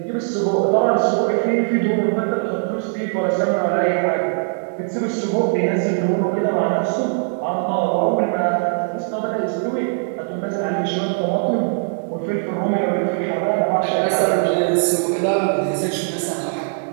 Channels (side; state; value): left; silent; digital silence